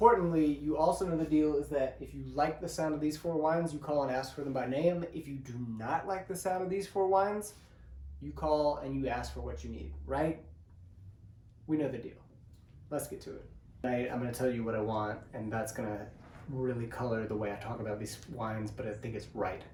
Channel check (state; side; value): identical; both; correlation 1.00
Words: you also know the deal is that if you like the sound of these 4 wines, you call and ask for them by name. If you do not like the sound of these 4 wines, you call and you ask for what you need, right? We know the deal. Let's get to it. Tonight, I'm going to tell you what I want, and that's going to really color the way I talk about these wines, but I think it's right.